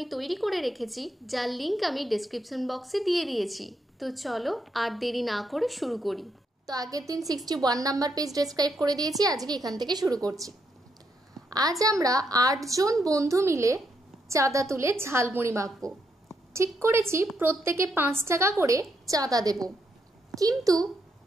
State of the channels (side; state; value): both; normal; correlation 0.78